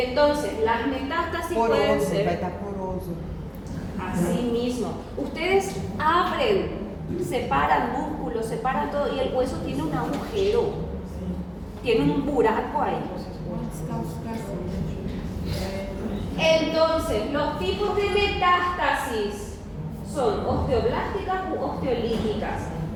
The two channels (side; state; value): both; identical; correlation 1.00